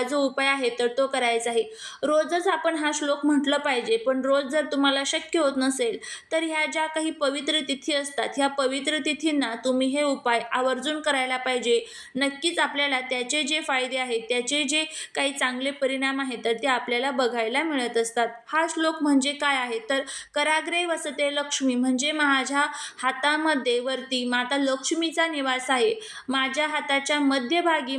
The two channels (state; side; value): identical; both; correlation 1.00